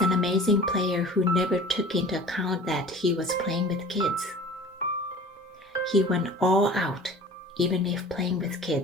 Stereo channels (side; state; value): both; normal; correlation 0.43